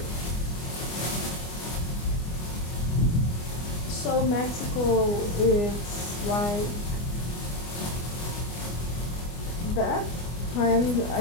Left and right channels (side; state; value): right; late; 24 ms